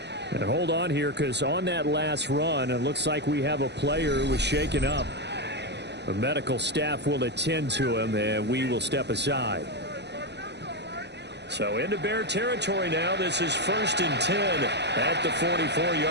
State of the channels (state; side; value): late; left; 0.50 ms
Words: And hold on here, because on that last run, it looks like we have a player who was shaken up. The medical staff will attend to him, and we will step aside. So into Bear territory now. This is first and 10 at the